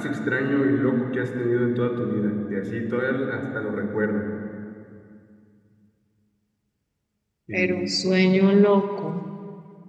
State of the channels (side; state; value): both; identical; correlation 1.00